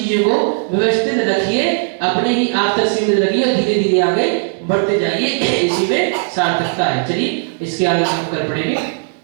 को व्यवस्थित रखिए, अपने ही आप तक सीमित रखिए और धीरे धीरे आगे बढ़ते जाइए। इसी में सार्थकता है। चलिए इसके आगे हम कर पड़ेंगे।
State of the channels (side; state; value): left; silent; 67 dB below the other